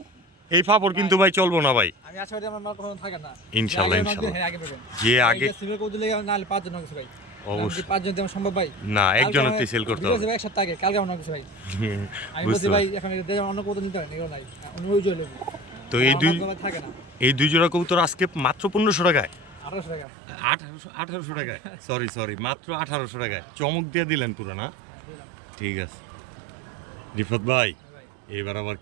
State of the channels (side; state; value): left; drops out; at 20.1 s